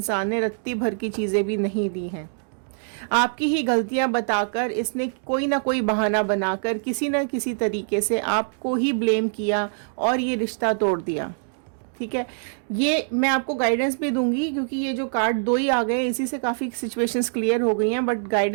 ने रत्ती भर की चीजें भी नहीं दी हैं। आपकी ही गलतियां बताकर इसने कोई ना कोई बहाना बनाकर किसी न किसी तरीके से आपको ही ब्लेम किया और ये रिश्ता तोड़ दिया। ठीक है, ये मैं आपको गाइडेंस भी दूंगी क्योंकि ये जो कार्ड दो ही आ गए, इसी से काफ़ी सिचुएशंस क्लियर हो गई हैं, बट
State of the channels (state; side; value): silent; left; digital silence